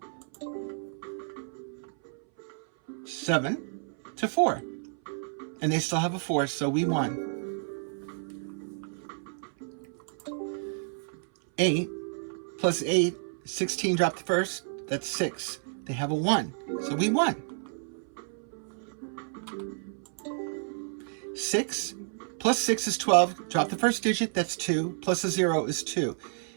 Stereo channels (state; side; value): silent; left; 58 dB below the other